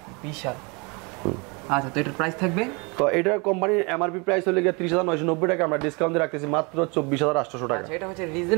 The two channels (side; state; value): left; quieter; 29.8 dB